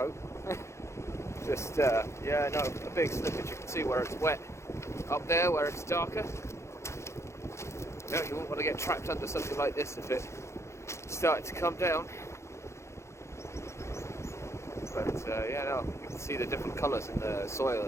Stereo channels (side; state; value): right; late; 0.14 ms